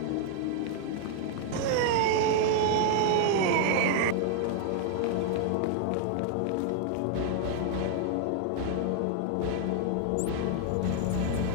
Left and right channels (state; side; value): different; both; correlation 0.00